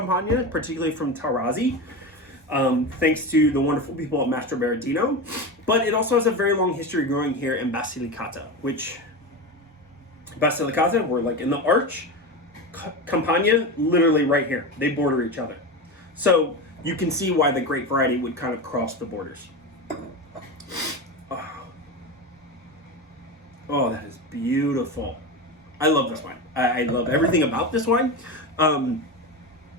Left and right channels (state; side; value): normal; both; correlation 0.22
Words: particularly from Tarazi, thanks to the wonderful people at Mastro Berardino. But it also has a very long history growing here in Basilicata, which Basilicata, we're like in the arch, Campania, literally right here. They border each other. So you can see why the grape variety would kind of cross the borders. Oh, that is beautiful. I love this wine. I love everything about this wine.